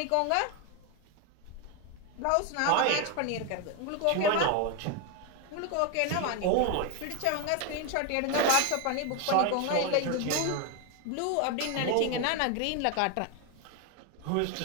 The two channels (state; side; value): different; both; correlation 0.02